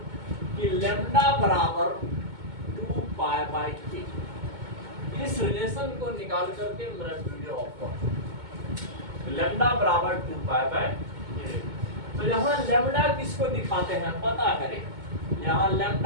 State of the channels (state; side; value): late; left; 2.2 ms